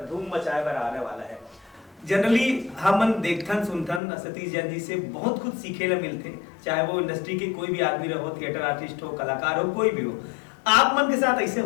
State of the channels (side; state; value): right; drops out; at 4.0 s